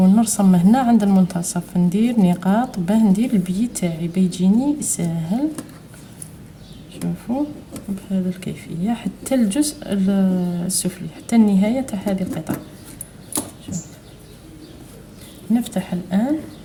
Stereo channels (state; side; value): identical; both; correlation 1.00